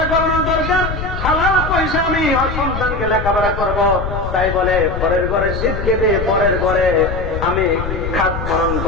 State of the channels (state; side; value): noise; left; rumble, 5 dB below the sound